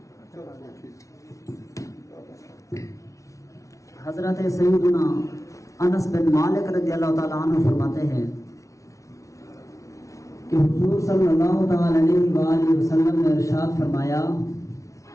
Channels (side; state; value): right; late; 0.15 ms